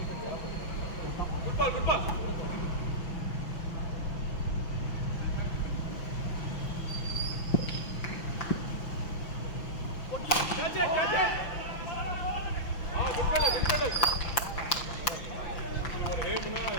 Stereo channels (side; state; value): right; late; 5.8 ms